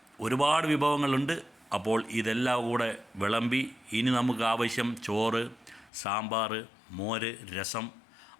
ഒരുപാട് വിഭവങ്ങളുണ്ട്. അപ്പോൾ ഇതെല്ലാം കൂടെ വിളമ്പി ഇനി നമുക്ക് ആവശ്യം ചോറ്, സാമ്പാർ, മോര്, രസം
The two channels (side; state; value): right; drops out; at 5.9 s